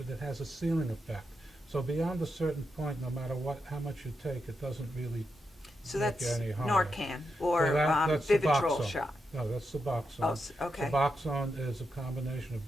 has a ceiling effect. So beyond a certain point, no matter how much you take, it doesn't really So make that's any harm. Narcan or So that's Vivitrol Suboxone. shot. No, that's Suboxone. Oh, okay. Suboxone is a combination of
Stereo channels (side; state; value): both; normal; correlation 0.85